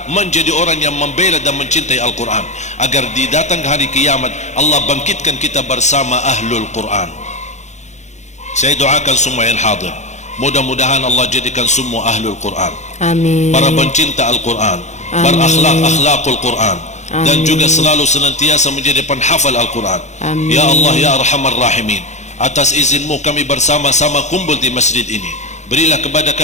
menjadi orang yang membela dan mencintai Al-Quran, agar di datang hari kiamat Allah bangkitkan kita bersama ahlul Quran. Saya doakan semua yang hadir, mudah-mudahan Allah jadikan semua ahlul Quran, Amin. para pencinta Al-Quran, berakhlak-akhlakul Quran, dan juga selalu senantiasa menjadi penghafal Al-Quran. Amin. Ya Allah ya Arhamar Rahimin, atas izinmu kami bersama-sama kumpul di masjid ini. Berilah kepada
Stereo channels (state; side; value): late; right; 0.34 ms